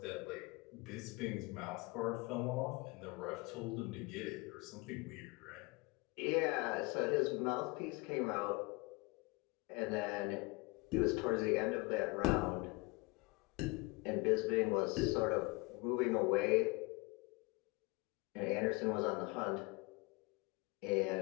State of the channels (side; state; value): right; quieter; 26.3 dB